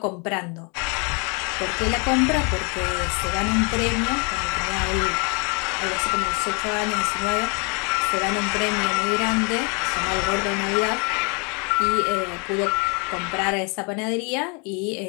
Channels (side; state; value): right; quieter; 34.1 dB